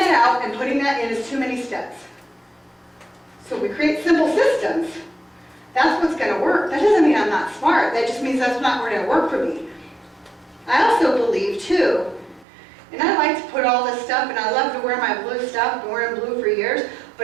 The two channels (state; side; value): drops out; left; at 12.5 s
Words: out and putting that in is too many steps. So we create simple systems. That's what's going to work. That doesn't mean I'm not smart. That just means that's not going to work for me. I also believe, too, and I like to put all this stuff, and I love to wear my blue stuff. I've been wearing blue for years.